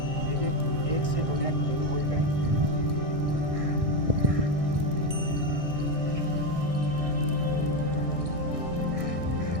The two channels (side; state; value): left; late; 1.6 ms